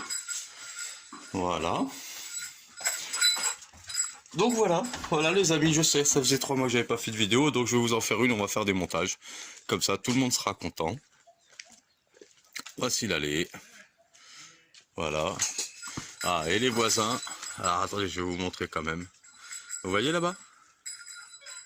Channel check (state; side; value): identical; both; correlation 1.00